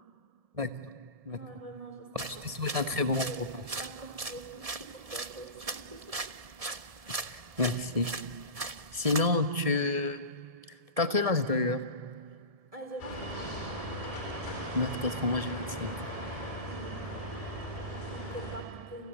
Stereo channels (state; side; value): late; left; 1.7 ms